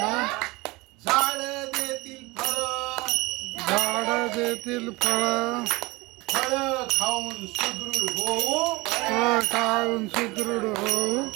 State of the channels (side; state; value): left; quieter; 23.2 dB